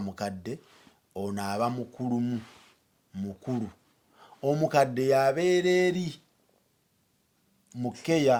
ono aba mukulu omukadde yabeera eri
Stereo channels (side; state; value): both; identical; correlation 1.00